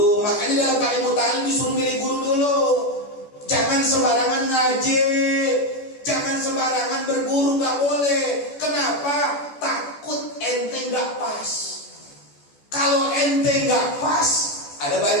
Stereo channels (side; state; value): right; late; 14 ms